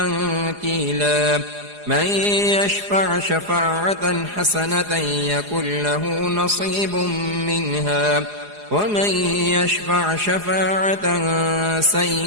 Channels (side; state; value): left; late; 4.8 ms